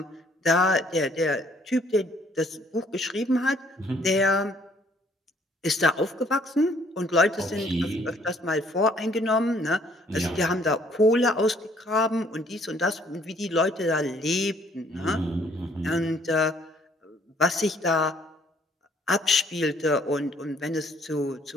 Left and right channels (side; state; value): both; normal; correlation 0.62